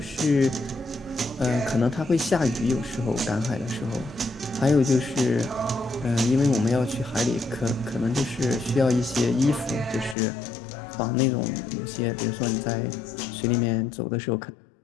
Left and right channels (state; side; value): drops out; right; at 10.2 s